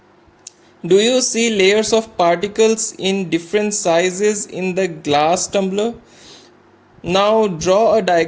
Do you see layers of particles in different sizes in the glass tumbler? Now draw a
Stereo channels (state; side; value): identical; both; correlation 1.00